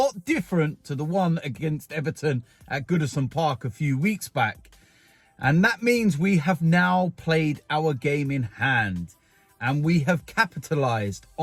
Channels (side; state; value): both; identical; correlation 1.00